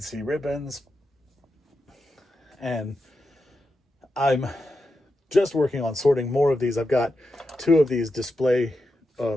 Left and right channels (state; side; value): normal; both; correlation 0.88